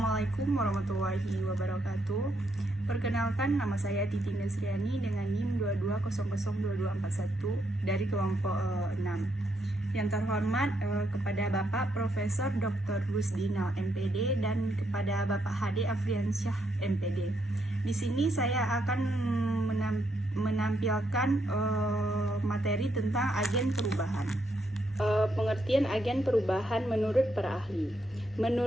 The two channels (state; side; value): normal; both; correlation 0.77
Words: warahmatullahi wabarakatuh. Perkenalkan, nama saya Titi Nesriani dengan NIM 22002241 dari kelompok 6. Yang terhormat kepada Bapak Profesor Dr. Rusdinal MPD dan kepada Bapak Hade Afriansyah MPD. Di sini saya akan menampilkan materi tentang agen perubahan. Pengertian agen perubahan menurut para ahli.